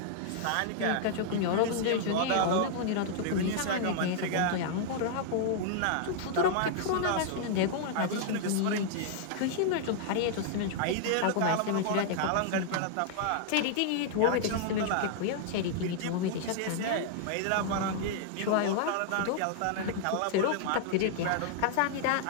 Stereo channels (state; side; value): different; both; correlation -0.01